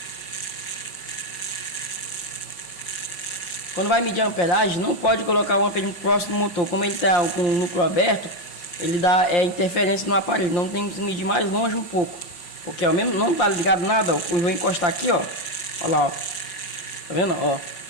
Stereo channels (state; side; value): late; right; 5.7 ms